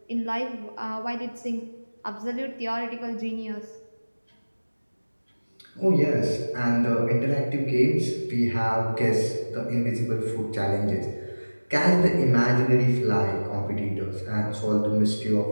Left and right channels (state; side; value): inverted; both; correlation -1.00